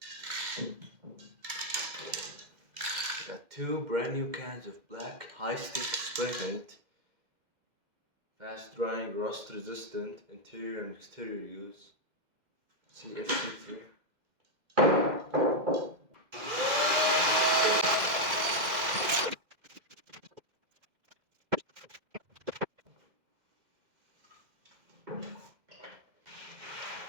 I got 2 brand new cans of black high stick spray paint. Fast drying, rust resistant, interior and exterior use. CFCT.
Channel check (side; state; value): left; late; 2.1 ms